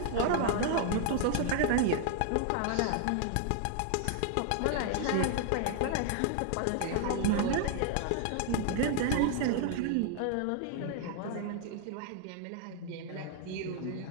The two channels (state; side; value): different; both; correlation 0.00